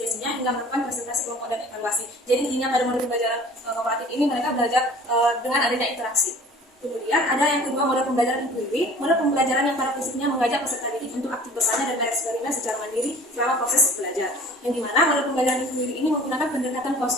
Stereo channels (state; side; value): normal; both; correlation 0.47